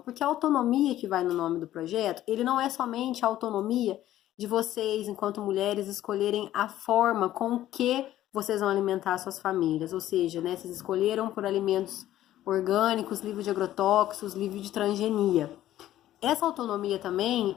a autonomia que vai no nome do projeto, ele não é somente a autonomia de vocês, enquanto mulheres, escolherem a forma com que vocês vão alimentar suas famílias, ou seja, né, vocês escolheram por alimentos orgânicos, livre de agrotóxicos, livre de transgenia. Essa autonomia também,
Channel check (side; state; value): right; quieter; 13.4 dB